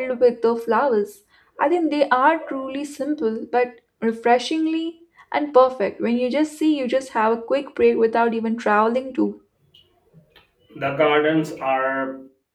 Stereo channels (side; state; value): both; identical; correlation 1.00